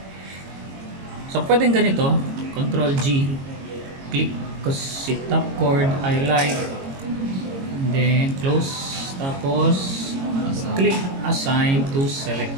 So pwedeng ganito, Control G, click ko si top chord, highlight, and then close, tapos click assign to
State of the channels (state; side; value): late; left; 22 ms